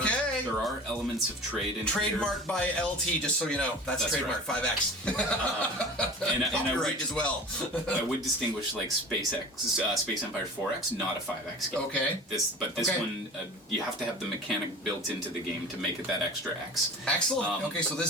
are elements of trade in Trademarked by LT, just so you know. That's trademark, right. 5X. And copyright as well. I would distinguish like Space Empire 4X, not a 5X game. Okay. This one, you have to have the mechanic built into the game to make it that extra X. Excellent. Okay, so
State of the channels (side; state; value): both; normal; correlation 0.38